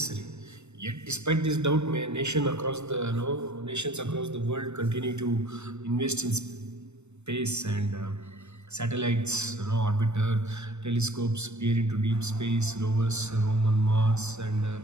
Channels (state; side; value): late; left; 0.82 ms